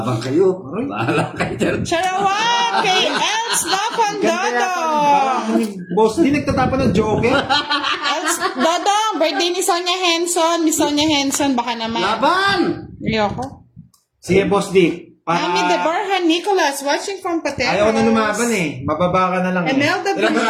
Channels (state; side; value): identical; both; correlation 1.00